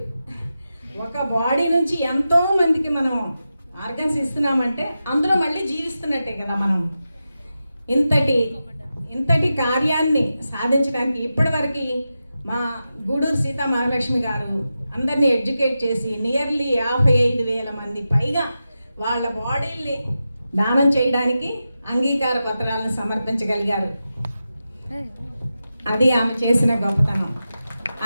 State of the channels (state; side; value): inverted; both; correlation -0.91